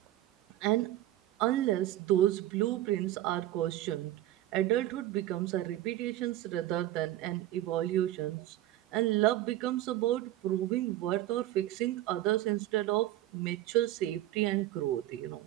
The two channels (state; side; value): quieter; left; 14.3 dB